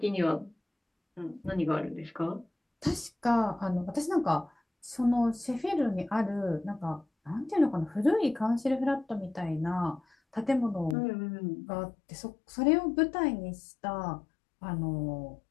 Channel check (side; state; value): right; drops out; at 11.0 s